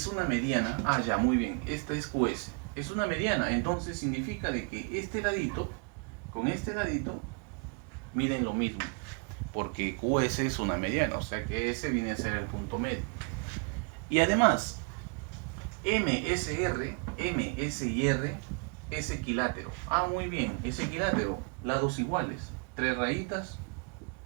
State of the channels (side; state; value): left; quieter; 39.3 dB